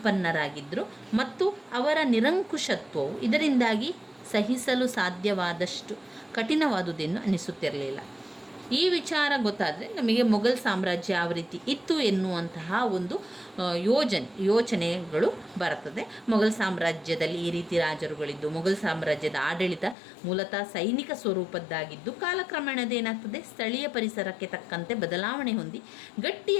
ಮತ್ತು ಅವರ ನಿರಂಕುಶತ್ವವು ಇದರಿಂದಾಗಿ ಸಹಿಸಲು ಸಾಧ್ಯವಾದಷ್ಟು ಕಠಿಣವಾದುದೆಂದು ಅನಿಸುತ್ತಿರಲಿಲ್ಲ. ಈ ವಿಚಾರ ಗೊತ್ತಾದರೆ ನಮಗೆ ಮೊಘಲ್ ಸಾಮ್ರಾಜ್ಯ ಯಾವ ರೀತಿ ಇತ್ತು ಎನ್ನುವಂತಹ ಒಂದು ಯೋಚನೆಗಳು ಬರ್ತದೆ. ಮೊಘಲ್ ಸಾಮ್ರಾಜ್ಯದಲ್ಲಿ ಈ ರೀತಿ ರಾಜರುಗಳಿದ್ದು, ಮೊಘಲ್ ಸಾಮ್ರಾಜ್ಯದ ಆಡಳಿತ ಮೂಲತಃ ಸೈನಿಕ ಸ್ವರೂಪದ್ದಾಗಿದ್ದು, ಕಾಲಕ್ರಮೇಣದೇನಾಗ್ತದೆ, ಸ್ಥಳೀಯ ಪರಿಸರಕ್ಕೆ ತಕ್ಕಂತೆ ಬದಲಾವಣೆ ಹೊಂದಿ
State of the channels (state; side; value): drops out; right; at 20.0 s